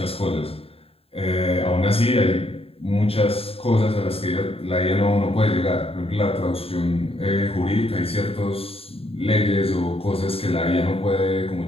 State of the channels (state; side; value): late; right; 0.28 ms